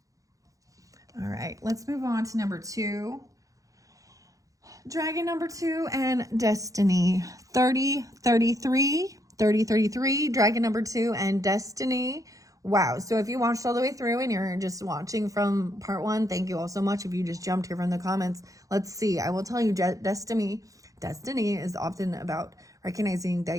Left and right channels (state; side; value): late; left; 0.16 ms